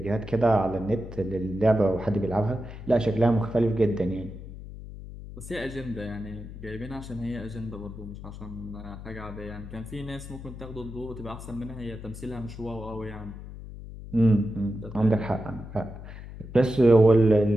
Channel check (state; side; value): noise; left; hum, 12 dB below the sound